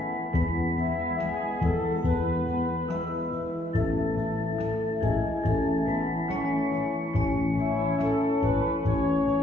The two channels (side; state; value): both; normal; correlation 0.72